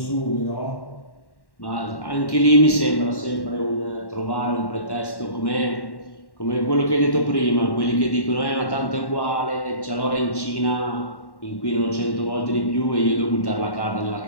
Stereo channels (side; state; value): right; late; 1.1 ms